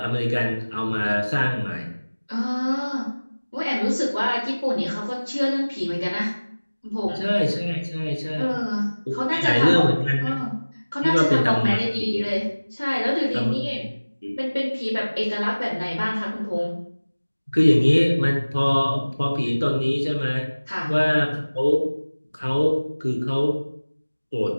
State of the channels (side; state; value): both; inverted; correlation -1.00